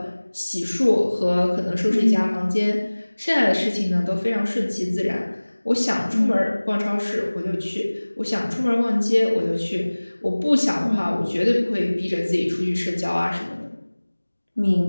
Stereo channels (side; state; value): both; inverted; correlation -1.00